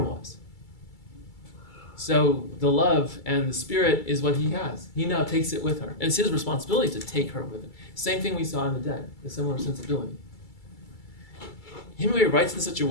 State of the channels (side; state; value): right; late; 2.3 ms